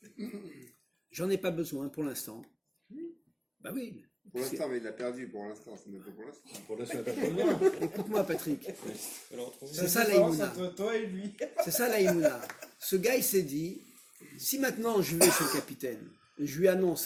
j'en ai pas besoin pour l'instant. Bah oui. Pour l'instant, mais il l'a perdu pour l'instant. C'est même pas pour l'instant. Pour l'instant, il n'y a pas de Écoute-moi, Patrick. C'est ça l'Aïmouna. Entre toi et lui. C'est ça l'Aïmouna. Ce gars, il s'est dit, si maintenant je vais chez le capitaine, je lui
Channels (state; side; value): identical; both; correlation 1.00